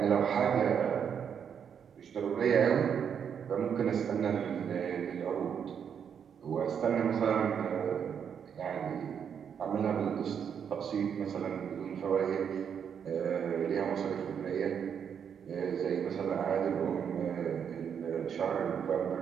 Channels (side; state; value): left; quieter; 7.7 dB